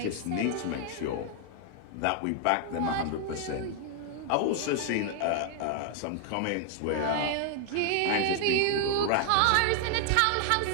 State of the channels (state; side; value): different; both; correlation 0.00